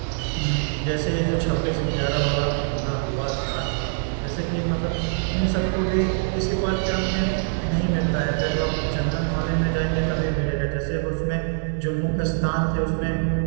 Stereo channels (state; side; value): silent; left; 63 dB below the other